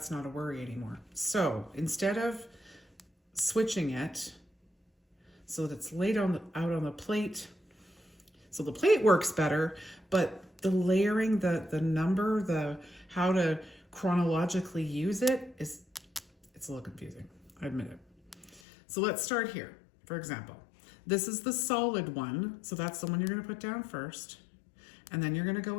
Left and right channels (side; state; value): right; drops out; at 18.6 s